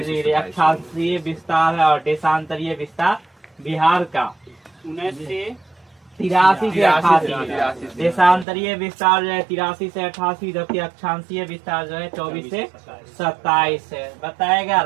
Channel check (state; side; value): drops out; left; at 8.5 s